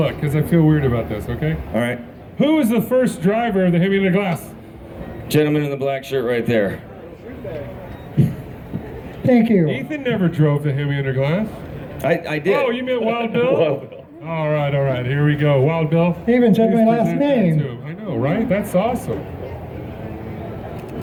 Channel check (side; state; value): both; identical; correlation 1.00